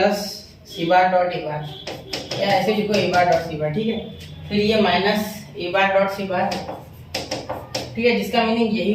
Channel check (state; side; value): identical; both; correlation 1.00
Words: C bar dot A bar, या ऐसे लिखो ए बार डॉट सी बार, ठीक है। फिर ये माइनस ए बार डॉट सी बार, ठीक है, जिसका मीनिंग यही